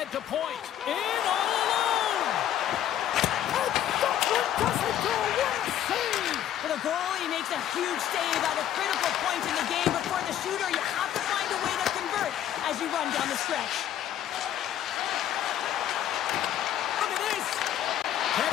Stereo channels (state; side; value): quieter; right; 11.1 dB